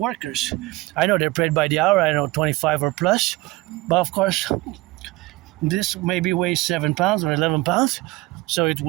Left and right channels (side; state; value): left; quieter; 20.3 dB